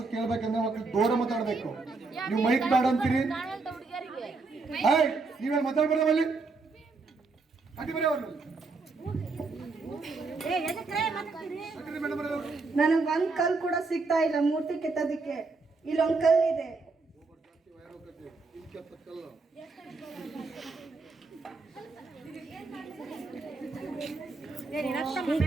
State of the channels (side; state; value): left; quieter; 3.9 dB